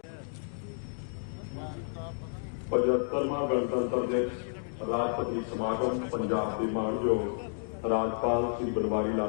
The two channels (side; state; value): right; silent; digital silence